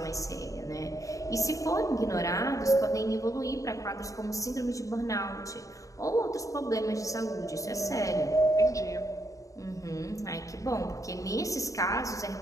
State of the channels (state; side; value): late; right; 0.16 ms